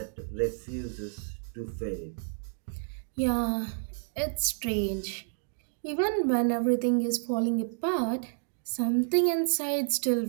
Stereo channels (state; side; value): silent; left; digital silence